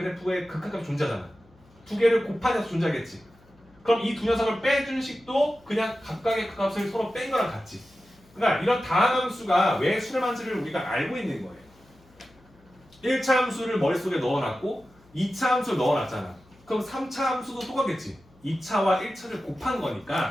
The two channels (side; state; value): left; noise; hum, 29 dB below the sound